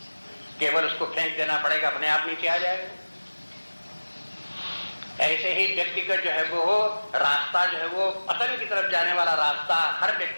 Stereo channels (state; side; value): inverted; both; correlation -1.00